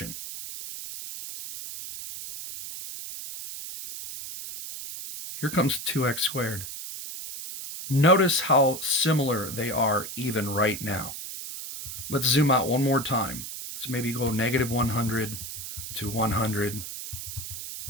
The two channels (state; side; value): noise; right; hiss, 9 dB below the sound